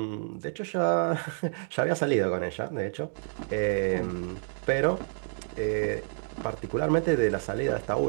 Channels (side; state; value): left; silent; digital silence